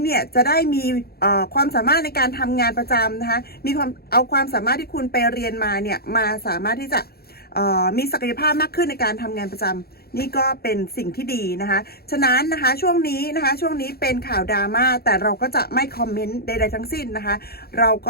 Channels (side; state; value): right; late; 0.45 ms